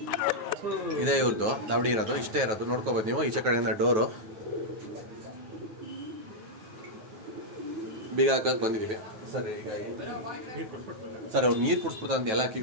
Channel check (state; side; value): late; left; 9.3 ms